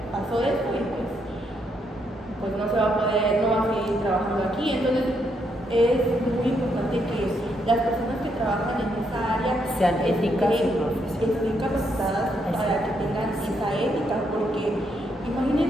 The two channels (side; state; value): both; normal; correlation 0.76